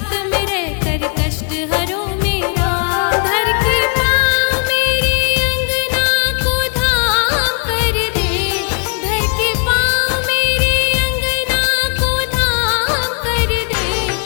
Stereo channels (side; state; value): right; quieter; 38.7 dB